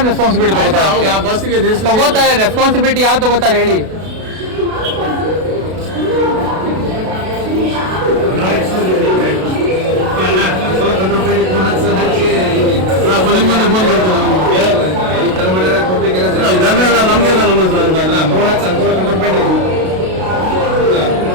ರೆಸ್ಪಾನ್ಸಿಬಿಲಿಟಿ ತಗೋತಾರೆ? ಬಸ್ಸಿಗೆ ತಗೋತಾರೆ. ರೆಸ್ಪಾನ್ಸಿಬಿಲಿಟಿ ಯಾರು ತಗೋತಾರೆ ಹೇಳಿ? ಫೋನ್ ನಮ್ಗೆಲ್ಲ ನಮ್ಮ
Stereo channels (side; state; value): left; late; 32 ms